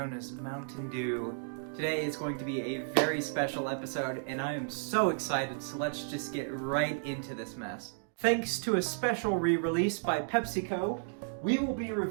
as Mountain Dew. Today is going to be a very special episode, and I am so excited, so let's just get right into this mess. Thanks to a special re-release by PepsiCo, we will be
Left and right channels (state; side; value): silent; left; digital silence